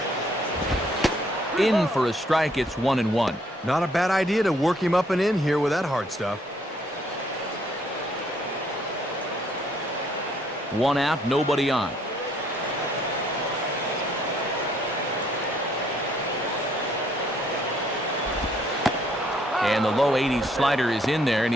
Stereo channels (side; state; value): both; normal; correlation 0.66